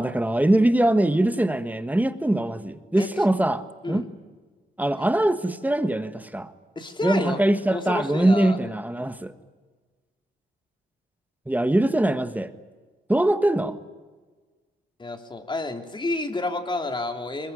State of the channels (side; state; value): both; normal; correlation 0.92